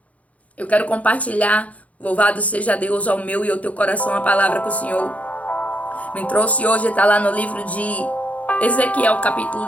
Eu quero compartilhar, louvado seja Deus, ao meu e ao teu coração, a palavra que o Senhor me trouxe hoje. Está lá no livro de Ezequiel, capítulo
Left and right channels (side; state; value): right; late; 0.068 ms